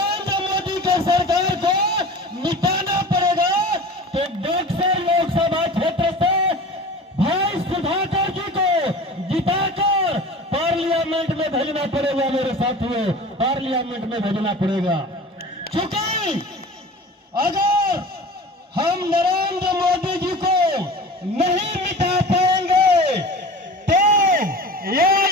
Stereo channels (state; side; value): normal; both; correlation 0.37